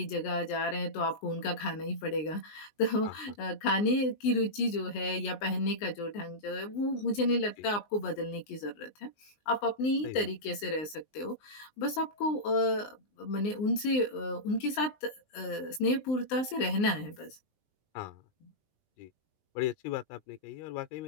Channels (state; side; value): late; right; 19 ms